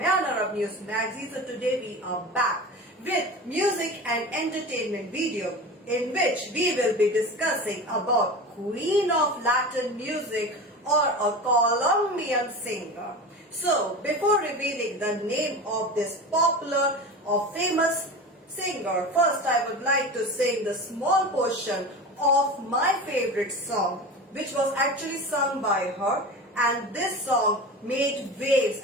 Arab News Magazine. So today we are back with music and entertainment video in which we will be discussing about Queen of Latin music or a Colombian singer. So before revealing the name of this popular or famous singer, first I would like to sing the small portion of my favorite song, which was actually sung by her, and this song made waves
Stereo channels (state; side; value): normal; both; correlation 0.30